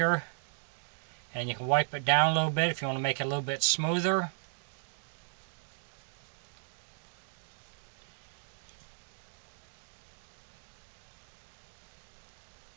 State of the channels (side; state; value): left; silent; digital silence